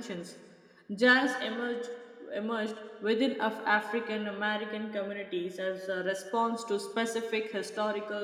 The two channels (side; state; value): both; identical; correlation 1.00